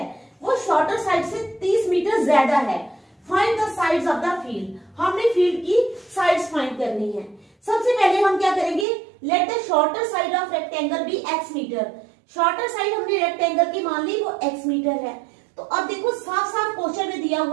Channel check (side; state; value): left; drops out; at 8.8 s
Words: वो शॉर्टर साइड से 30 मीटर ज्यादा है, find the sides of the field. हमने फील्ड की साइड्स फाइंड करनी है। सबसे पहले हम क्या करेंगे? Let the shorter side of rectangle be x metre. Shorter side हमने रेक्टेंगल की मान ली, वो x मीटर है। तो अब देखो, साफ साफ क्वेश्चन में दिया